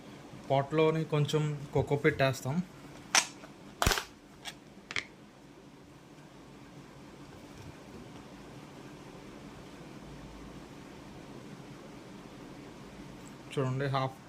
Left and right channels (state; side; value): identical; both; correlation 1.00